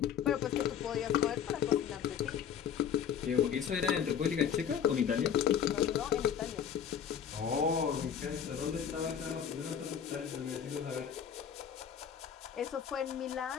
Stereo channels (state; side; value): quieter; right; 8.3 dB